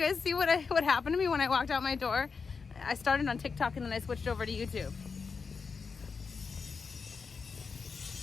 see what happened to me when I walked out my door? I started on TikTok and then I switched over to YouTube.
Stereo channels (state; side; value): quieter; right; 5.2 dB